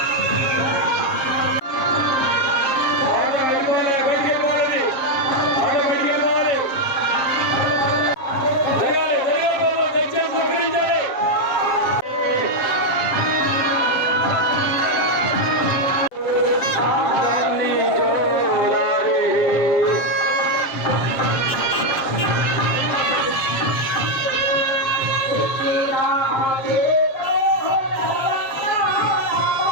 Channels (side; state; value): right; late; 7.1 ms